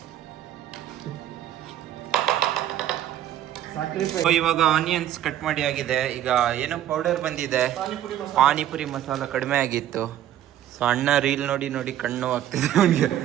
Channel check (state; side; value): quieter; left; 11.8 dB